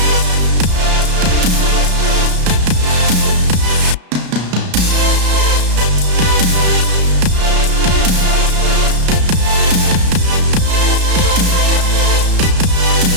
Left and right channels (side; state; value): left; late; 33 ms